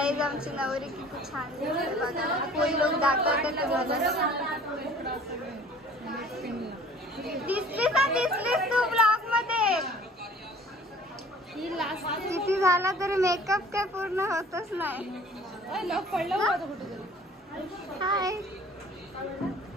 आमची नवरी किती छान दिसते बघा। फुल लुक दाखवते तुम्हाला। दिसलीस तू ब्लॉग मध्ये? किती झाला तरी मेकअप काय पूर्ण होतच नाही। हाय,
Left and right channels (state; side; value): normal; both; correlation 0.50